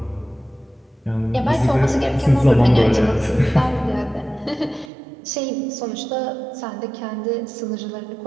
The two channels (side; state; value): left; drops out; at 4.9 s